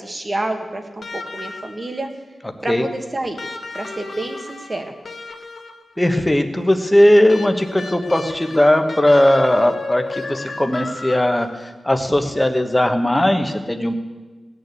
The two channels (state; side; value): normal; both; correlation 0.98